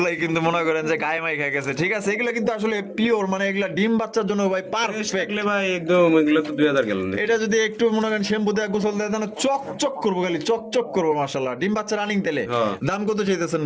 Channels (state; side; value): identical; both; correlation 1.00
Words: কিন্তু মনে করেন যে গায়ে মাই খেয়ে গেছে ঠিক আছে এগুলো কিন্তু আসলে পিওর মানে এগুলা ডিম বাচ্চার জন্য ভাই পারফেক্ট দেখলে ভাই একদম এগুলো তো 2000 গেল না এটা যদি একটু মনে করেন শ্যাম্পু দিয়ে গোসল দেয় তাহলে চকচক করবো খালি চকচক করবো মাশাআল্লাহ ডিম বাচ্চা রানিং তেলে হ্যাঁ। দাম কত চাইতেছেন